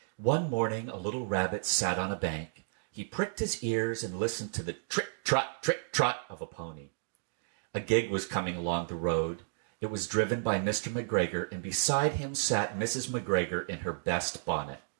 One morning, a little rabbit sat on a bank. He pricked his ears and listened to the trick-trot of a pony. A gig was coming along the road. It was driven by Mr. McGregor, and beside him sat Mrs. McGregor in her best bonnet.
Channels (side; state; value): left; silent; digital silence